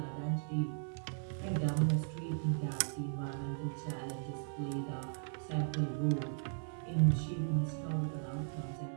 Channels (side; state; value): left; silent; 53 dB below the other